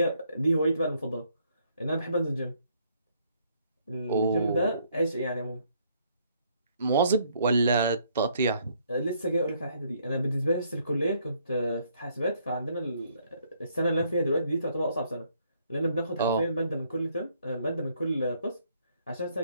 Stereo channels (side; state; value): both; inverted; correlation -0.68